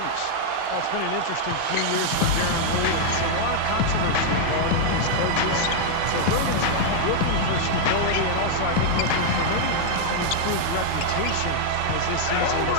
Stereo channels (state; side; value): different; both; correlation -0.01